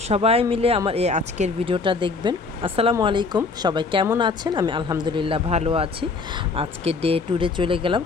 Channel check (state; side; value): quieter; right; 4.3 dB